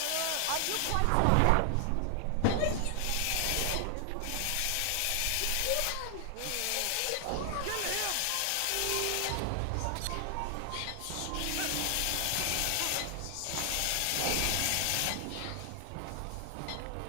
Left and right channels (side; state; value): both; different; correlation 0.00